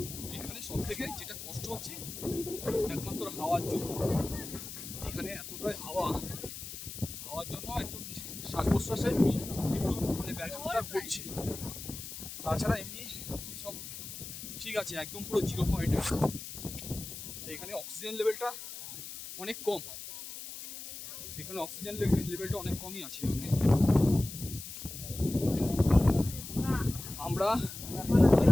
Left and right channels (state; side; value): noise; left; hiss, 10 dB below the sound